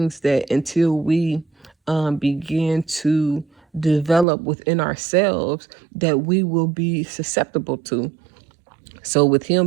that until we begin to develop within ourselves, that we will be susceptible to. So with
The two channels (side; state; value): left; drops out; at 4.2 s